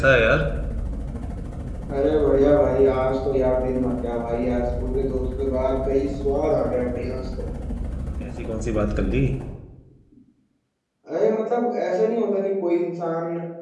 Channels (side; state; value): both; identical; correlation 1.00